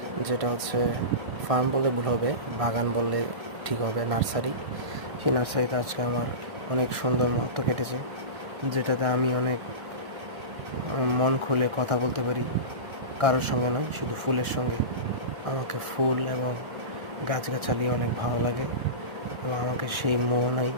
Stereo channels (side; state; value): left; late; 1.4 ms